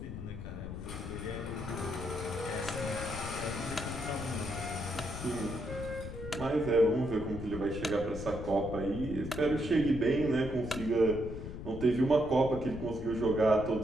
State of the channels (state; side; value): noise; left; rumble, 8 dB below the sound